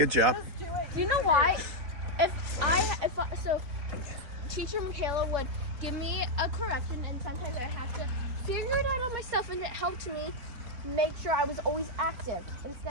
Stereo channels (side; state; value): left; late; 3.9 ms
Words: job. Just do it. Do you know why? So teacher Michaela would give me a correction, and sometimes I have to figure it out on myself, and it helped me make sure I was always active